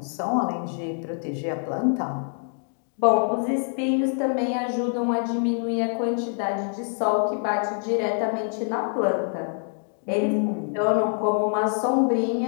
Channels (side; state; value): right; silent; 62 dB below the other